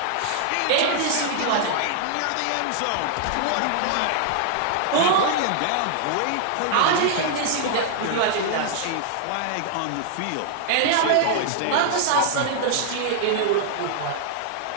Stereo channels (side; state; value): both; different; correlation -0.01